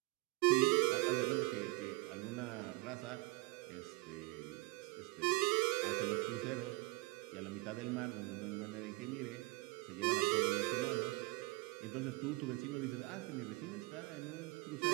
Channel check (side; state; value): left; quieter; 23.2 dB